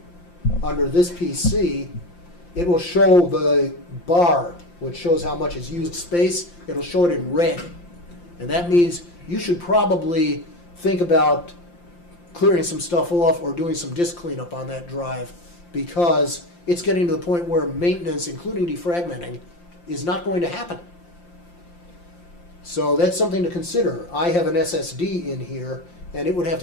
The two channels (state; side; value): late; right; 5.8 ms